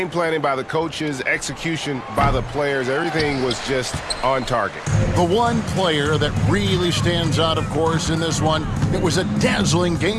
planning by the coaches, execution by the players, everything was just on target. The one player that really stands out, of course, in this one, it was a dazzling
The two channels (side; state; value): both; identical; correlation 1.00